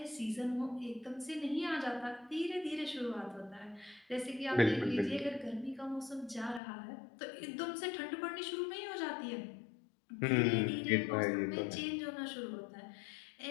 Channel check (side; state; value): right; drops out; at 6.6 s